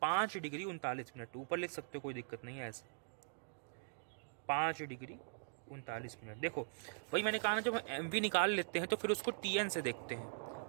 5 डिग्री 39 मिनट, ऊपर लिख सकते हो कोई दिक्कत नहीं है, ऐसे 5 डिग्री 39 मिनट। देखो वही मैंने कहा ना, जब हम MV निकाल लेते हैं तो फिर उसको TN से देखते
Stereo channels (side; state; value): left; silent; digital silence